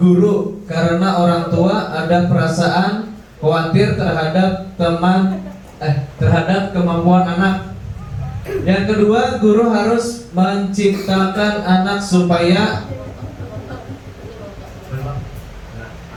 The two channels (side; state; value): both; identical; correlation 1.00